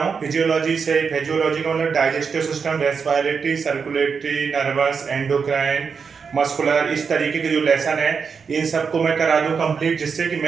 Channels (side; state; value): left; quieter; 5.8 dB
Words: फिजियोलॉजी का मतलब digestive system, respiratory, circulatory, nervous, endocrine, muscular, इस तरीके के जो लेसन है इन सबको मैं करा दूं कंप्लीट, जिससे कि